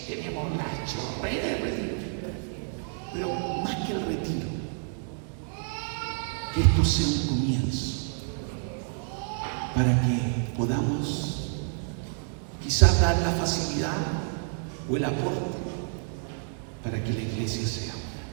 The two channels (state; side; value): silent; left; 59 dB below the other